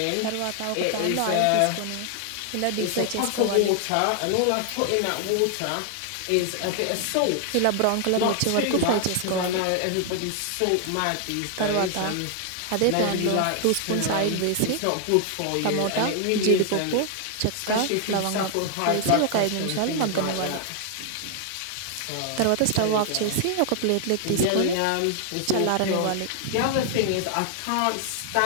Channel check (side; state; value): both; different; correlation 0.00